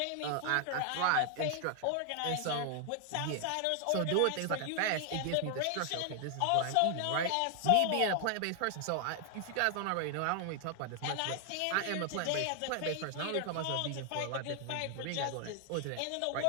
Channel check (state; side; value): different; both; correlation 0.00